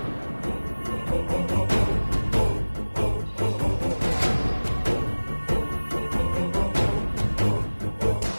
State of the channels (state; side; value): inverted; both; correlation -1.00